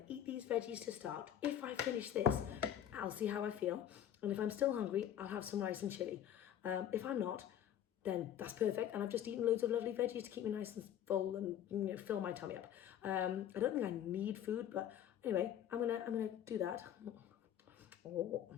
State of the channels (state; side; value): quieter; right; 10.4 dB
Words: to eat these veggies to start. If I finish this, I'll see how I feel. And if I'm still hungry, I'll have some rice and chili. If I'm not, then that's perfect. And I've just eaten loads of lovely veggies to keep me nice and full and fill my tummy up. I don't think I need food, but anyway, I'm gonna do that. Oh,